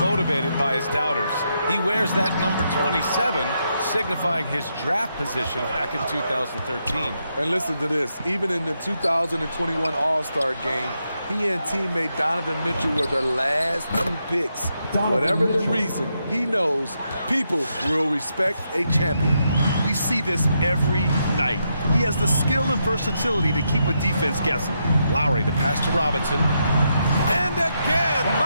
by his doubters. He wears that number 27, signifying his draft position back in 2013. And listen to this. Even in the 2021 All-Star game, he and teammate Donovan Mitchell were the last 2 picks. Whatever the reason, he knows people will respect a champion. We see this every night. He has the skill and versatility to keep a defense guessing. Lowry, the pass to Robinson. And again,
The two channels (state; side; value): inverted; both; correlation -0.81